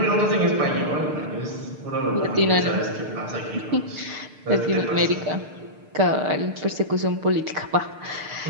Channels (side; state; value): left; late; 6.6 ms